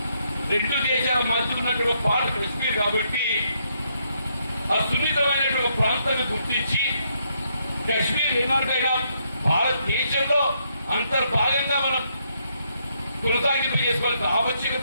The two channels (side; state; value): both; inverted; correlation -0.75